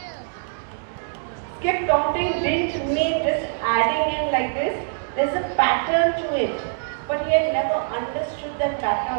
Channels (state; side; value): silent; left; digital silence